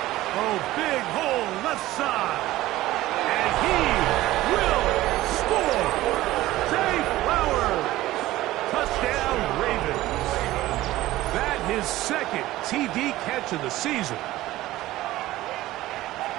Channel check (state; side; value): quieter; left; 16.4 dB